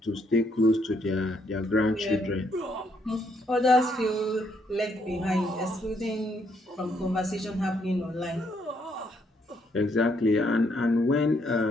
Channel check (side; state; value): both; normal; correlation 0.72